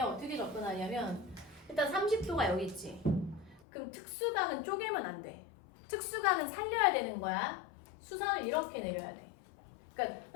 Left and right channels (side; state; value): right; drops out; at 3.6 s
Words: 접근하냐면 일단 30도가 여기 있지. 그럼 특수각은 쪼개면 안 돼. 특수각은 살려야 되는 거야. 수선을 이렇게 내려야 돼. 그러니까